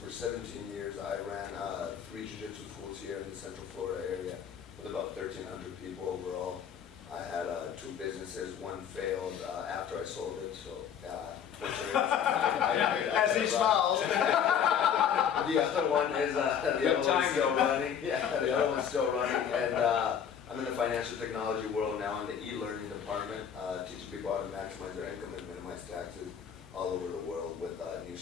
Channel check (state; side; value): quieter; right; 8.2 dB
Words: 17 years. I ran 3 Jiu-Jitsu schools here in the Central Florida area with about 1,300 people overall. I had 2 businesses. One failed after I sold it, so fortunately, As he smiles. The other one is the other one's still running. Yeah, the other one's still running, and I'm in the financial technology world now in the e-learning department, teaching people how to maximize their income and minimize taxes all over the world with new